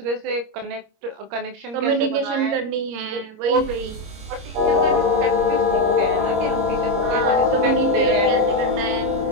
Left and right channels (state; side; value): late; left; 26 ms